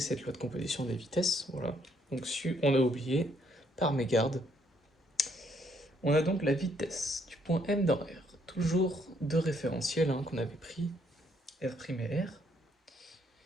cette loi de composition des vitesses, voilà. Donc on a oublié, par mégarde. On a donc la vitesse du point M dans R, toujours deux référentiels qu'on avait pris, R' et R,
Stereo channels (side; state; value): both; normal; correlation 0.70